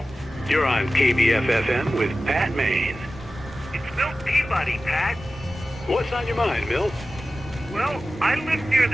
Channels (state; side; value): normal; both; correlation 0.95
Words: You're on KBF-FM with Pat Maine. It's Milt Peabody, Pat. What's on your mind, Milt? Well, I live near